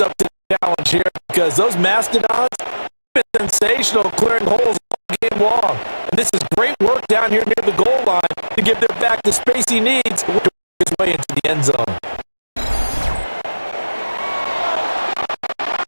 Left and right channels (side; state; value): both; inverted; correlation -1.00